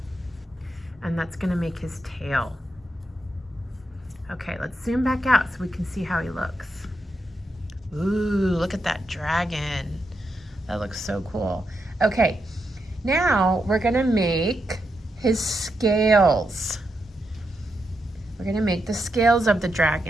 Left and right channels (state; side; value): normal; both; correlation 0.84